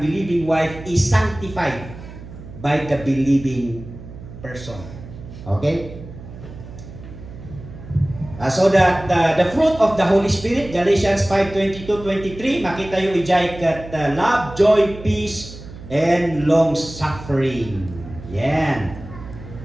wife is sanctified by the believing person. Okay? So that the fruit of the Holy Spirit, Galatians 5:22-23, makita yung ijay kat love, joy, peace, and long suffering. Yan.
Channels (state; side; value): noise; right; hum, 15 dB below the sound